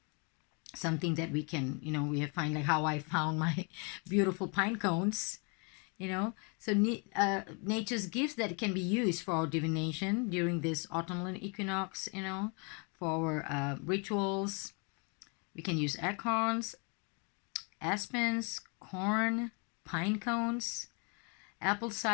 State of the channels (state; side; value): quieter; right; 34.8 dB